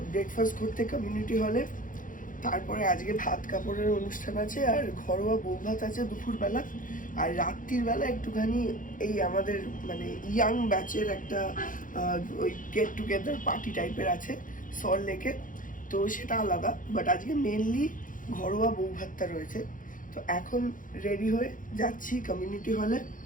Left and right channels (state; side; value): late; right; 0.39 ms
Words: ব্রেকফাস্ট করতে কমিউনিটি হলে। তারপরে আজকে ভাত কাপড়ের অনুষ্ঠান আছে আর ঘরোয়া বউ ভাত আছে দুপুরবেলা। আর রাত্রির বেলা একটুখানি এই আমাদের মানে ইয়াং ব্যাচের একটা ওই গেট টুগেদার পার্টি টাইপের আছে সল্ট লেকে, তো সেটা আলাদা। বাট আজকে মেনলি ঘরোয়া বউ ভাতটা রয়েছে। তো এখন রেডি হয়ে যাচ্ছি কমিউনিটি হলে,